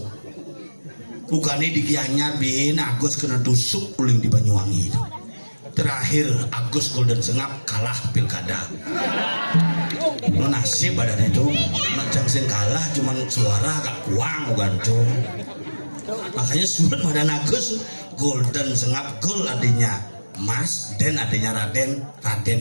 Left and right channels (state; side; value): inverted; both; correlation -1.00